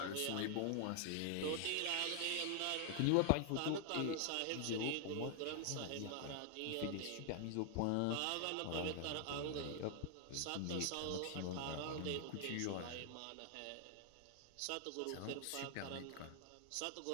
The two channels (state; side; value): different; both; correlation 0.00